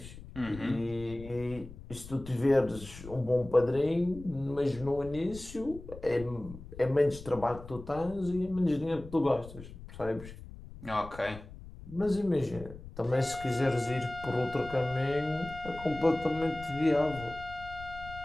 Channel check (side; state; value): left; noise; rumble, 15 dB below the sound